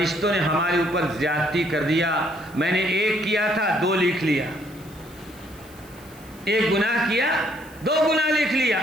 نے ہمارے اوپر زیادتی کر دیا، میں نے 1 کیا تھا 2 لکھ لیا، 1 گناہ کیا 2 گناہ لکھ لیا۔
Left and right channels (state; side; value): noise; left; hiss, 24 dB below the sound